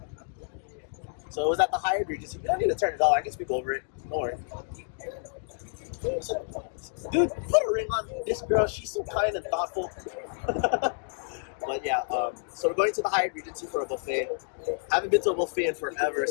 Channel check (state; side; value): silent; right; digital silence